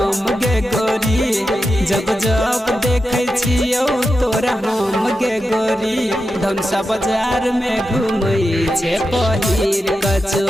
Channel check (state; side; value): normal; both; correlation 0.89